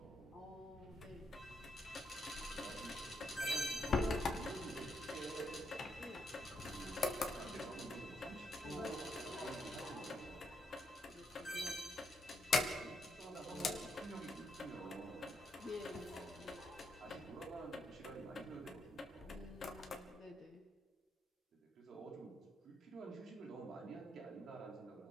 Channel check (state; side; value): normal; both; correlation 0.78